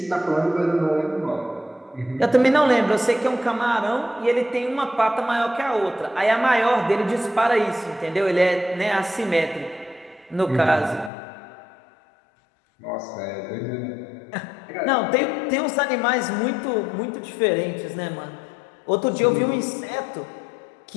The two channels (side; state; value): right; drops out; at 11.1 s